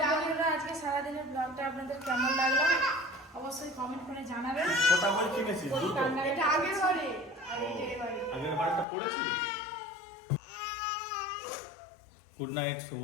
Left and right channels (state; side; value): drops out; right; at 8.8 s